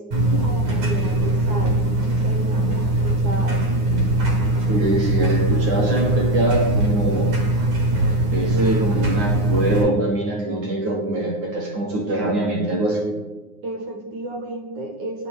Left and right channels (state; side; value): late; left; 9.7 ms